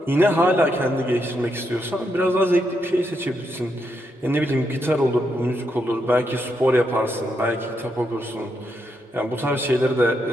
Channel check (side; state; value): both; normal; correlation 0.80